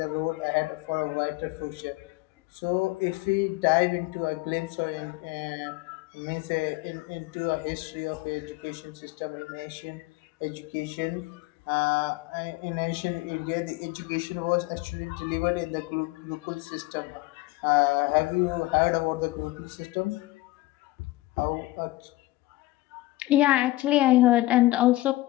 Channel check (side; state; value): right; quieter; 18.7 dB